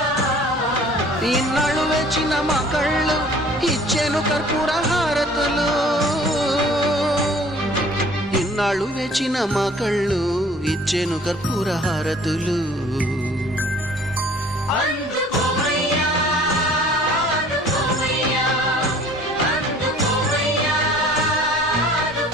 ఇన్నాళ్ళు వేచిన మా కళ్ళు ఇచ్చేను కర్పూర హారతులు ఇన్నాళ్ళు వేచిన మా కళ్ళు ఇచ్చేను కర్పూర హారతులు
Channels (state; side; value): normal; both; correlation 0.51